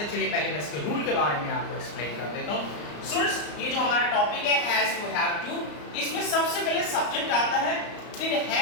हैं। चलिए पहले मैं इसके रूल के बारे में आपको एक्सप्लेन कर देता हूँ। स्टूडेंट्स, ये जो हमारा टॉपिक है हैज टू हैव टू, इसमें सबसे पहले सब्जेक्ट आता है, फिर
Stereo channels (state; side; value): late; right; 34 ms